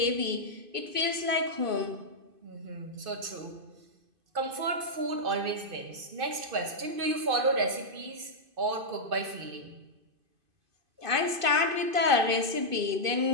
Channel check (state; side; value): late; left; 2.5 ms